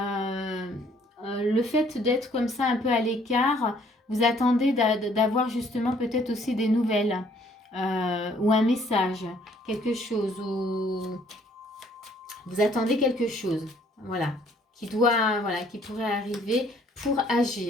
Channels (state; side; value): normal; both; correlation 0.62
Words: fait d'être comme ça un peu à l'écart. Vous attendez d'avoir justement peut-être aussi des nouvelles ou un message, quelque chose, ou vous attendez quelque chose, voilà, qui pourrait arriver pour